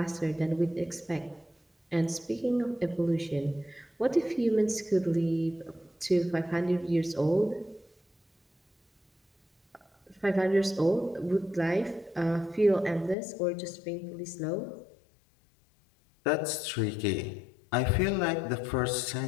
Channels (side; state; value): right; drops out; at 13.2 s